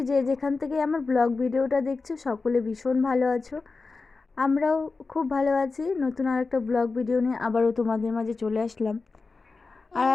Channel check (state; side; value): quieter; right; 4.1 dB